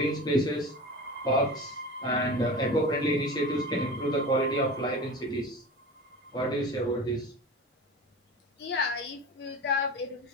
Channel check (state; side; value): normal; both; correlation 0.32